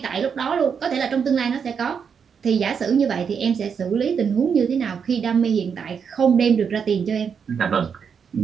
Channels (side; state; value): left; quieter; 6.7 dB